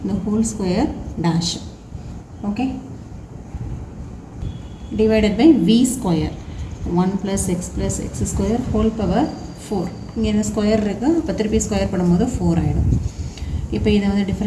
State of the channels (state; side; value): identical; both; correlation 1.00